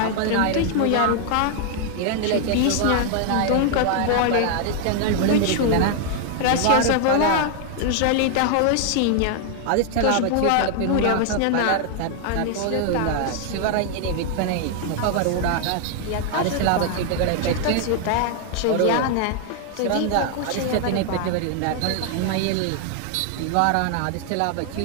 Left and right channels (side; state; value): both; different; correlation 0.00